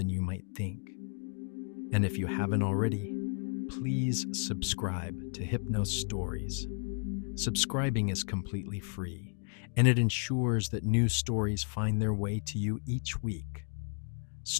you might think. And if you haven't already, please subscribe to Hypnos Stories. Subscribing is completely free, and it ensures that new stories find their way to you each week.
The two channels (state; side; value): silent; right; 56 dB below the other